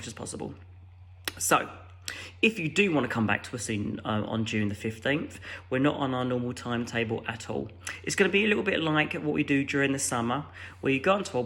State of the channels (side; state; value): both; identical; correlation 1.00